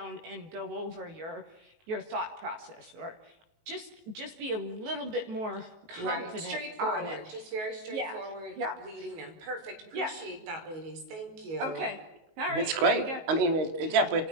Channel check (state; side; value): late; left; 19 ms